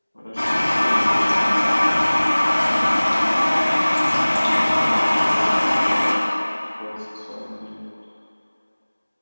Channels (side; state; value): both; inverted; correlation -1.00